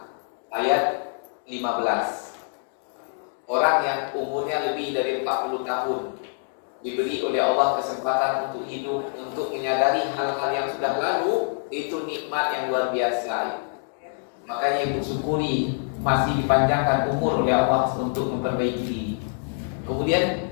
ayat 15. Orang yang umurnya lebih dari 40 tahun diberi oleh Allah kesempatan untuk hidup, untuk menyadari hal-hal yang sudah lalu, itu nikmat yang luar biasa. Makanya ibu syukuri masih dipanjangkan umur oleh Allah untuk memperbaiki diri. Kemudian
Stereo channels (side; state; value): right; silent; 59 dB below the other